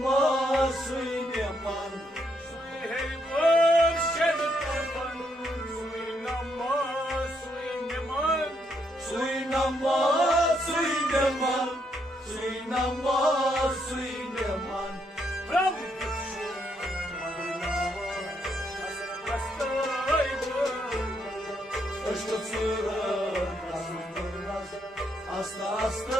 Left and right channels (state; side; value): normal; both; correlation 0.76